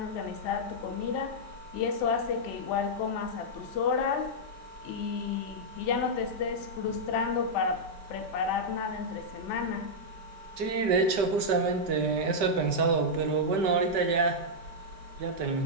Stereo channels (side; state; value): left; late; 5.1 ms